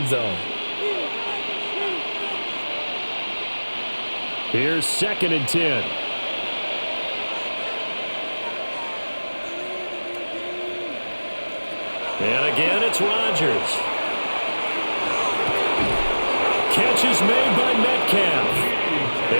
zone. Here's 2nd and 10. And again, it's Rodgers. Catch is made by Metcalf.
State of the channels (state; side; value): inverted; both; correlation -1.00